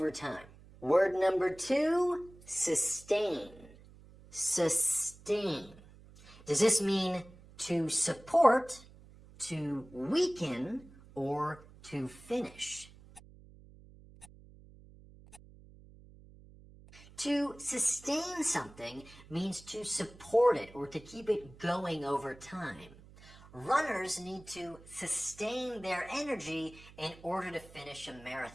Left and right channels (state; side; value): noise; right; hum, 21 dB below the sound